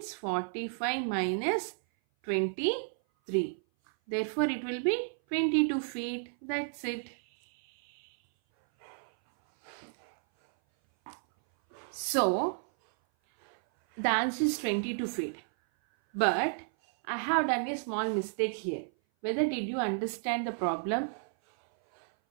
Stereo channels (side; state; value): left; silent; 56 dB below the other